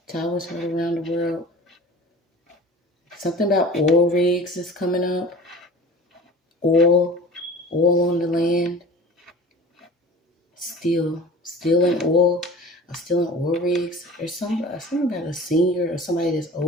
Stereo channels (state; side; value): normal; both; correlation 0.40